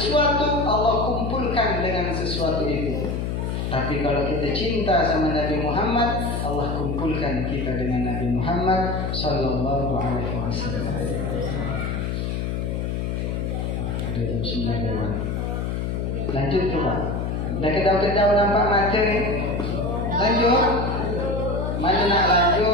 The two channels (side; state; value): left; noise; hum, 1 dB below the sound